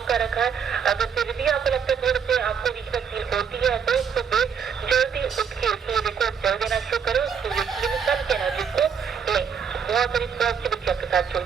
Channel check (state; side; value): quieter; left; 7.0 dB